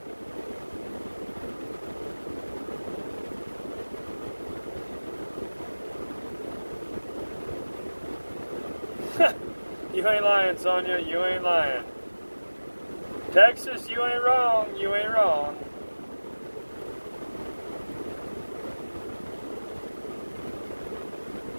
You ain't lying, Sonia, you ain't lying. Texas, you ain't wrong, you ain't wrong.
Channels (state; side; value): inverted; both; correlation -1.00